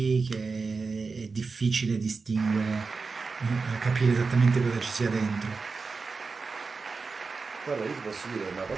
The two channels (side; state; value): left; quieter; 4.5 dB